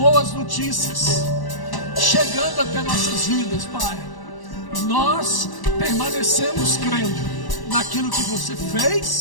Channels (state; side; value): late; right; 1.1 ms